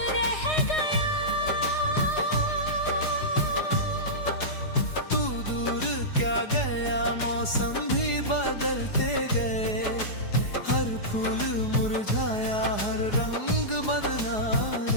रह गया। तू दूर क्या गया, मौसम भी बदलते गए, हर फूल मुरझाया, हर रंग बदला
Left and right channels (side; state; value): right; late; 4.8 ms